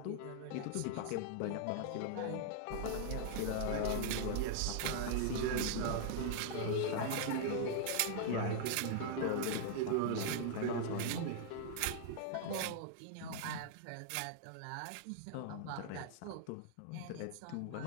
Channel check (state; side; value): different; both; correlation -0.01